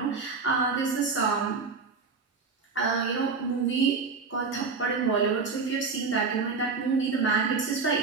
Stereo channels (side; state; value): left; quieter; 4.7 dB